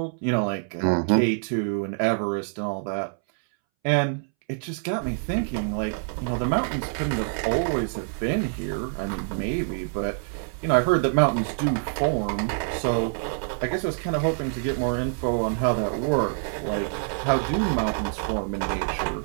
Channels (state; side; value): silent; left; 61 dB below the other